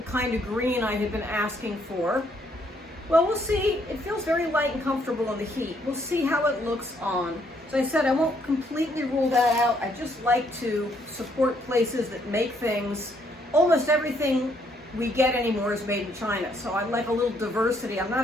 kind of green I had been asking for. Well, we'll see. It feels very light and comfortable in the heat. We'll see how it looks on. So I said I won't completely rule that out. I just like to support places that make things. Almost everything we get anymore is made in China. So I like a little diversity. I'm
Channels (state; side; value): normal; both; correlation 0.70